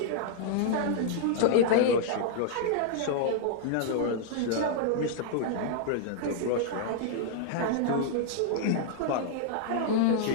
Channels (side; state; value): both; different; correlation -0.01